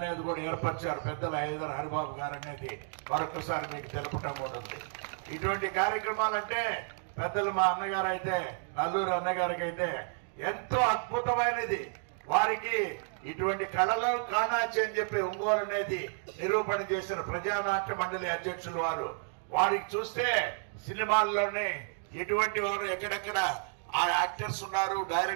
కూడా ఏర్పరిచారు పెద్దల ఇద్దరు హరిబాబు గారు అనేది మరొకసారి మీకు తెలపటం కూడా ఉంది. ఇటువంటి కార్యక్రమాలంటే పెద్దలు మా అన్నగారు అయితే నల్లూరు అన్నగారికి అయితే ఎంతో అద్భుతమైనది. వారికి ఇటువంటి కళలు కానాచి అని చెప్పి ఒంగోలు అనేది నిరూపణ చేసిన ప్రజానాట్య మండలి అధ్యక్షులు వారికి చూస్తే సినిమాల్లోనే ఎటువంటి వారు ఎక్కడెక్కడ ఆ యాక్టర్స్ ఉన్నారు,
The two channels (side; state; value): left; silent; 57 dB below the other